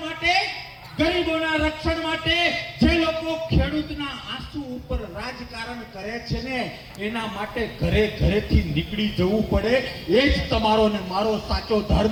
માટે, ગરીબોના રક્ષણ માટે જે લોકો ખેડૂતના આંસુ ઉપર રાજકારણ કરે છે ને, એના માટે ઘરે ઘરેથી નીકળી જવું પડે. એ જ તમારો ને મારો સાચો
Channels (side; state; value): both; identical; correlation 1.00